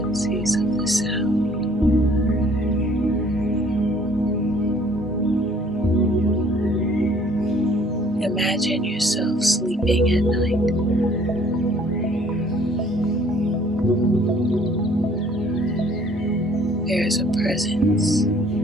of the sound. Imagine yourself sleeping at night. There is a presence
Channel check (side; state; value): both; normal; correlation 0.58